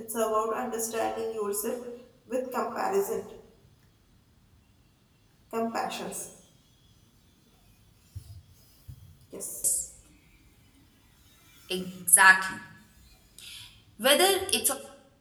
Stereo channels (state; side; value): identical; both; correlation 1.00